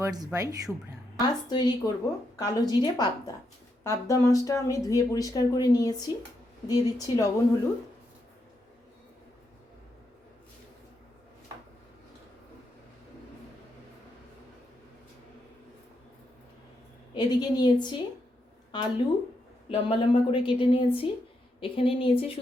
by Shubhra. আজ তৈরি করব কালো জিরে পাবদা। পাবদা মাছটা আমি ধুয়ে পরিষ্কার করে নিয়েছি। দিয়ে দিচ্ছি লবণ হলুদ, এদিকে নিয়েছি আলু লম্বা লম্বা করে কেটে নিয়েছি। এখানে নিয়েছি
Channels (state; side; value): normal; both; correlation 0.81